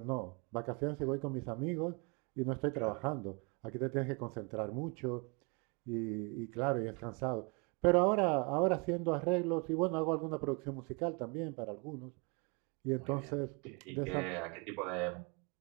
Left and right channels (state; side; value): quieter; left; 31.4 dB